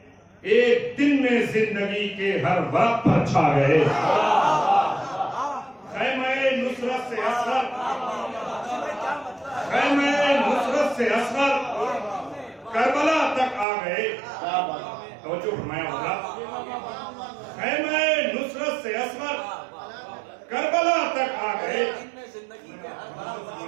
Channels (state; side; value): drops out; left; at 13.7 s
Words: ایک دن میں زندگی کے ہر ورق پر چھا گئے. خیمہ نصرت سے اصغر خیمہ نصرت سے اصغر کربلا تک آ گئے. توجہ فرمایا ہوگا. خیمہ نصرت سے اصغر کربلا تک آ گئے.